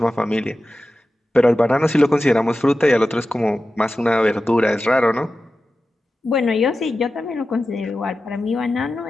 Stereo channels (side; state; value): both; normal; correlation 0.93